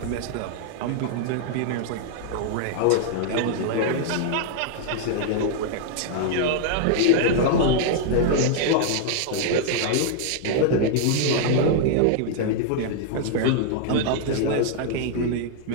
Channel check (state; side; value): different; both; correlation -0.01